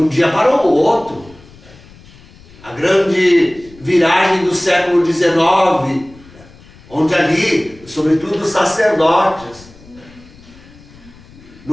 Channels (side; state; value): left; noise; rumble, 23 dB below the sound